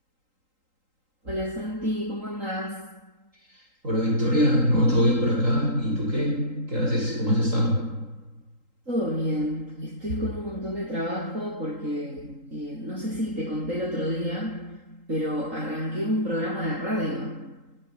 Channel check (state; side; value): late; left; 3.8 ms